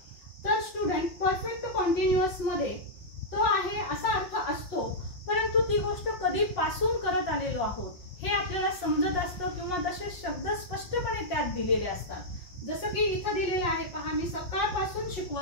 तर स्टुडंट परफेक्ट कंटिन्युअस मध्ये तो आहे असा अर्थ असतो, परंतु ती गोष्ट कधीपासून करत आलेलो आहोत हे आपल्याला समजत असतं किंवा तसे शब्द स्पष्टपणे त्यात दिलेले असतात. जसं की इथं दिलेलं आहे पहा, मी सकाळपासून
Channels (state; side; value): late; right; 5.5 ms